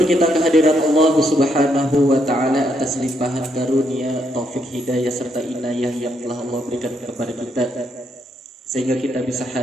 kita kehadirat Allah Subhanahu wa taala atas limpahan karunia, taufik, hidayah serta inayah yang telah Allah berikan kepada kita, sehingga kita bisa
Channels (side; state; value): both; normal; correlation 0.76